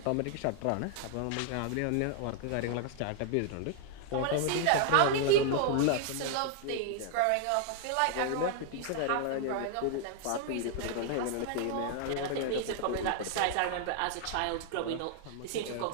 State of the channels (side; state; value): both; different; correlation 0.00